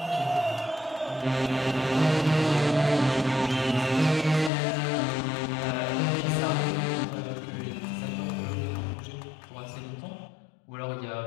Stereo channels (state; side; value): drops out; right; at 4.5 s